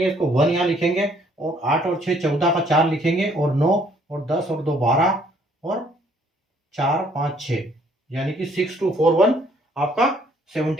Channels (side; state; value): both; normal; correlation 0.63